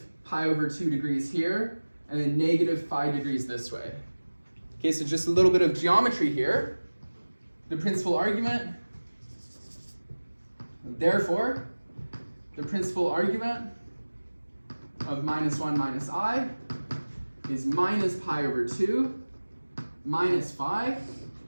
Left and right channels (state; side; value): inverted; both; correlation -1.00